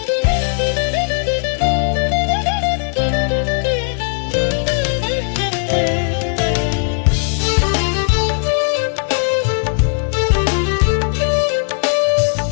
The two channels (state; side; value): silent; right; 68 dB below the other